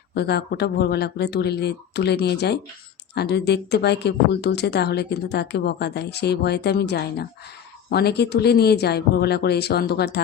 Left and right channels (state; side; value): quieter; right; 8.8 dB